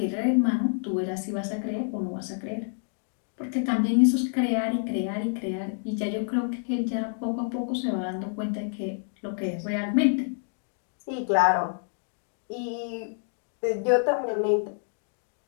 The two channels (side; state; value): right; silent; 59 dB below the other